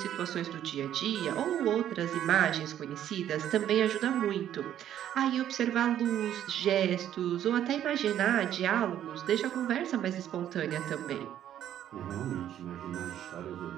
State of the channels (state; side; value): quieter; left; 11.0 dB